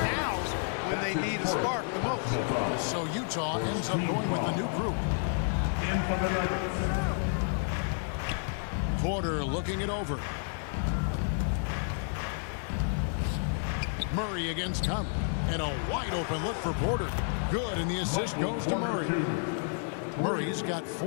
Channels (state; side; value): silent; right; 57 dB below the other